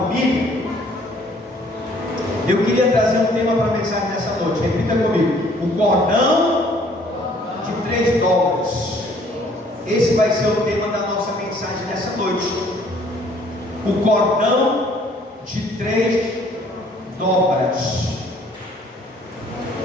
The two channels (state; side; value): normal; both; correlation 0.59